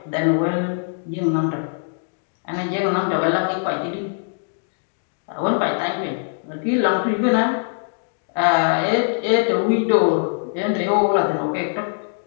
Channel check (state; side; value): silent; right; digital silence